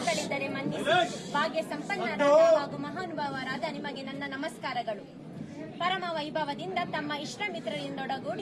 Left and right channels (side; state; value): both; identical; correlation 1.00